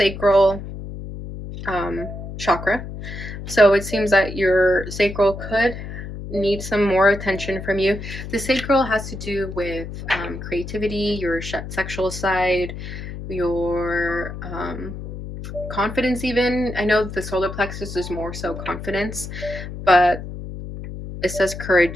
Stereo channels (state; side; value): noise; left; hum, 9 dB below the sound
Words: chakra, so it seems that your sacral could need some more attention from you. The sacral has to do with creativity, your sexual side, your confidence even. I know the solar plexus is more so confidence, but it says